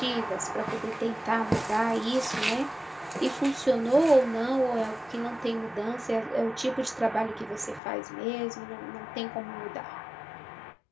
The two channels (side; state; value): right; drops out; at 7.8 s